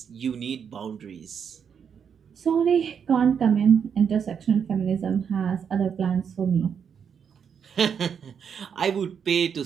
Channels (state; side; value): quieter; left; 7.2 dB